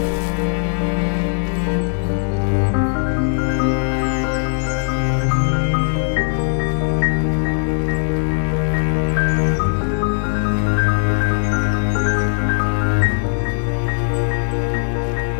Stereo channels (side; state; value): right; silent; 65 dB below the other